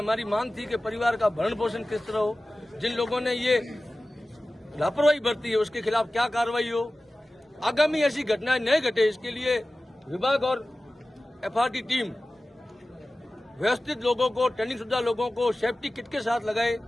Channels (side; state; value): both; normal; correlation 0.96